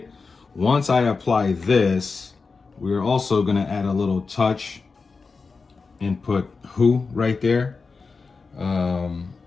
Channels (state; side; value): quieter; right; 4.5 dB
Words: Once I apply this, we're also going to add a little touch and put Who right there. And